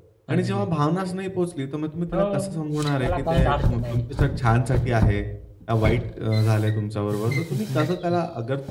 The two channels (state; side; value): identical; both; correlation 1.00